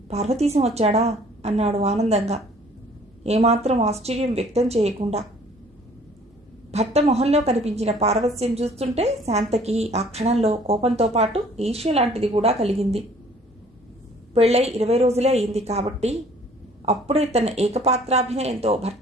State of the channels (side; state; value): both; normal; correlation 0.55